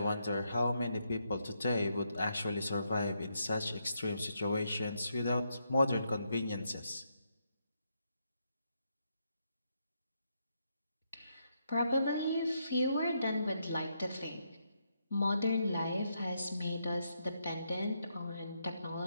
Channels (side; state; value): both; inverted; correlation -0.80